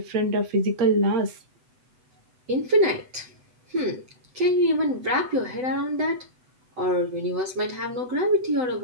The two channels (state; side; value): late; left; 7.9 ms